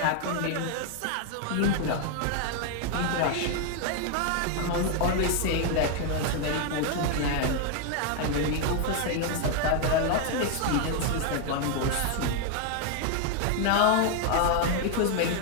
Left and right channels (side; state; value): both; different; correlation 0.01